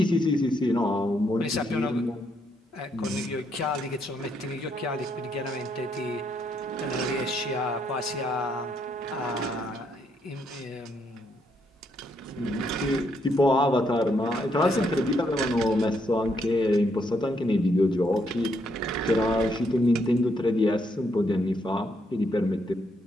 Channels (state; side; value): normal; both; correlation 0.75